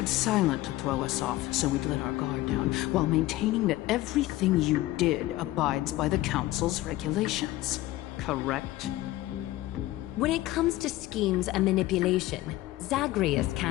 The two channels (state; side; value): quieter; right; 16.9 dB